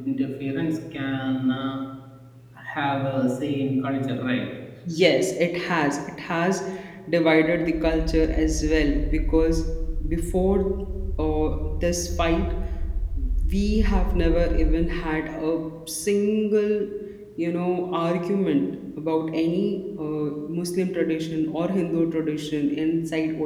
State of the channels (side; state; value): both; identical; correlation 1.00